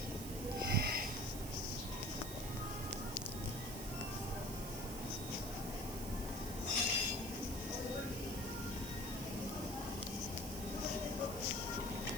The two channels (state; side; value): noise; right; hiss, 8 dB below the sound